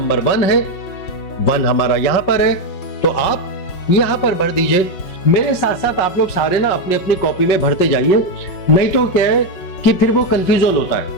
1 है। 1 हमारा यहां पर है तो आप यहां पर भर दीजिए। मेरे साथ साथ आप लोग सारे ना अपनी अपनी कॉपी में भरते जाइए, नहीं तो क्या है कि फिर वो कंफ्यूजन होता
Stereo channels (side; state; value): right; late; 5.5 ms